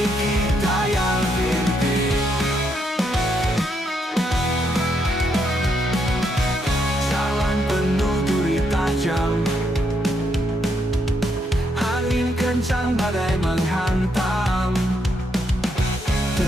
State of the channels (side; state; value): both; normal; correlation 0.77